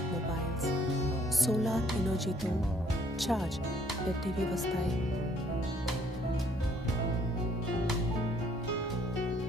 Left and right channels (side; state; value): both; normal; correlation 0.64